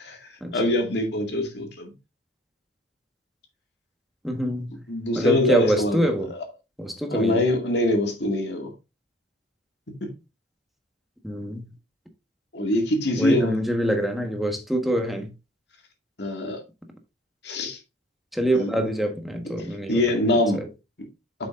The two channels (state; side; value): normal; both; correlation 0.54